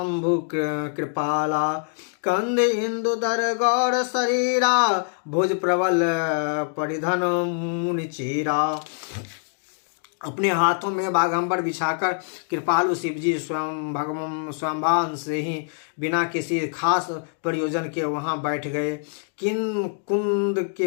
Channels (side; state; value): right; silent; digital silence